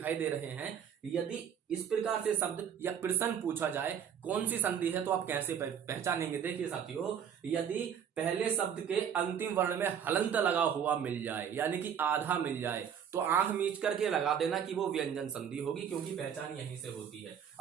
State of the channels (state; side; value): quieter; left; 8.3 dB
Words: दे रहे हैं, यदि इस प्रकार से शब्द या प्रश्न पूछा जाए कौन सी संधि है, तो आप कैसे पहचानेंगे? देखिए साथियों, यदि पहले शब्द के अंतिम वर्ण में हलंत लगा हुआ मिल जाए, यानी कि आधा मिल जाए, तो आंख मीच करके लगा देना कि वो व्यंजन संधि होगी, क्योंकि पहचान यहीं से होती है।